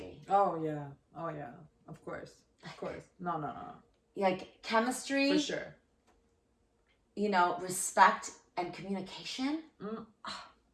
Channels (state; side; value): identical; both; correlation 1.00